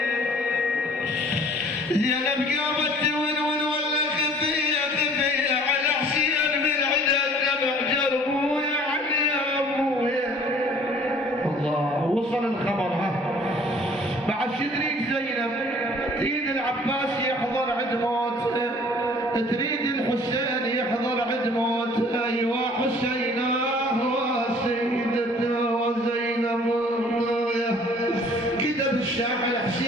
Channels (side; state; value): both; normal; correlation 0.53